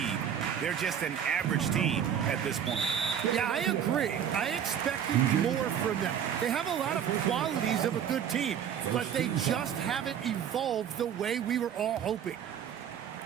they're just an average team at this point. Yeah, I agree. I expected more from them. They have a lot of qualities of a good team, but they just haven't evolved the way we were all hoping.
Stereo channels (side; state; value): left; quieter; 8.8 dB